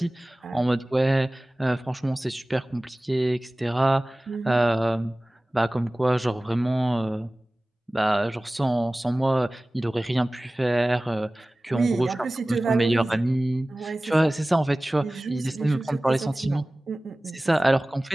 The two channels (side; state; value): both; normal; correlation 0.98